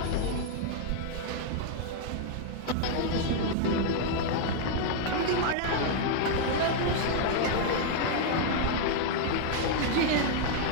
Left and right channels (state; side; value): different; both; correlation 0.00